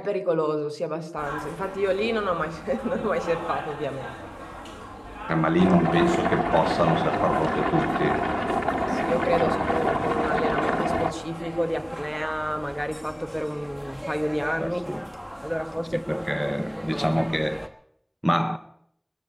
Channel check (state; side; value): identical; both; correlation 1.00